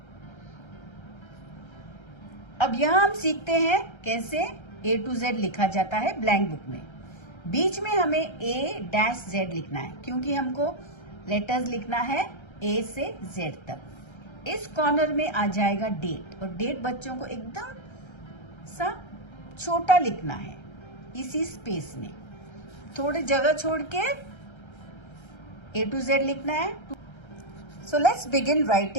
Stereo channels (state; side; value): late; right; 1.3 ms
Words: अब यहाँ हम सीखते हैं कैसे A to Z लिखा जाता है blank book में। बीच में हमें A डैश Z लिखना है, क्योंकि हमको लेटर्स लिखना है A से Z तक। इस कॉर्नर में आ जाएगा डेट, और डेट बच्चों को एकदम सा छोटा लिखना है इसी स्पेस में, थोड़ी जगह छोड़ के A to Z लिखना है। So let's begin